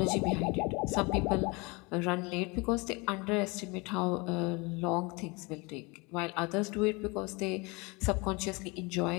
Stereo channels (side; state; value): right; quieter; 26.8 dB